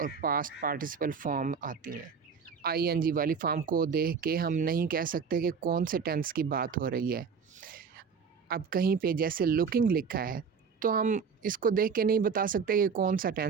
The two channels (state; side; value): quieter; left; 6.0 dB